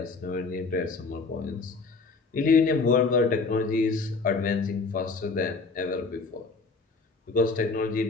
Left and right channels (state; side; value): quieter; right; 4.2 dB